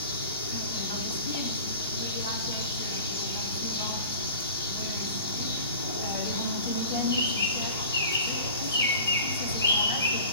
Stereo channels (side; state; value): both; inverted; correlation -0.41